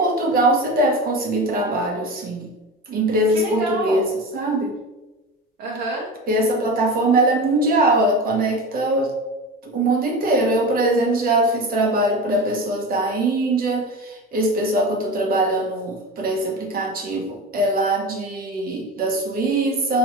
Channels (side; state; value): both; normal; correlation 0.28